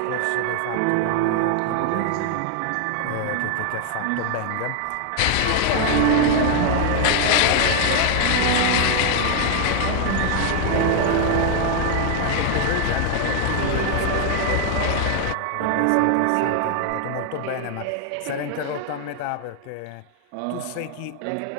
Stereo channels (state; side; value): different; both; correlation 0.00